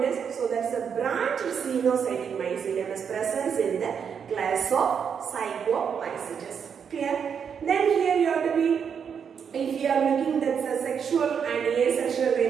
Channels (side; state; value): left; quieter; 7.1 dB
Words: is, so that's a branch xenocytic mycelium is presence in the class of Zygomycetes. Clear? Then here you have to be, if you are looking that's a sexual and asexual